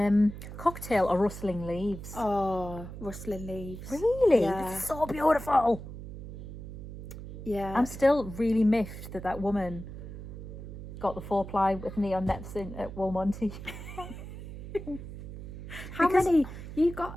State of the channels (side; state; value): right; noise; hum, 11 dB below the sound